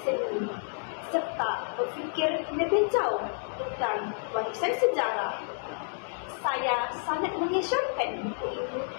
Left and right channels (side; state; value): right; silent; 58 dB below the other